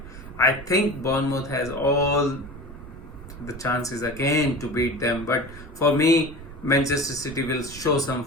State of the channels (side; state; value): right; noise; rumble, 15 dB below the sound